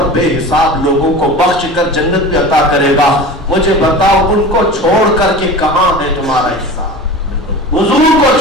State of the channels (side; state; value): both; normal; correlation 0.34